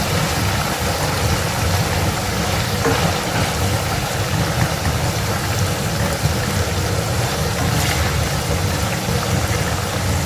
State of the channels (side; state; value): both; identical; correlation 1.00